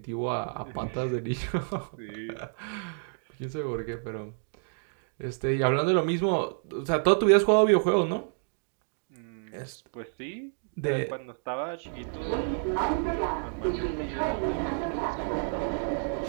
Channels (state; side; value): silent; left; 58 dB below the other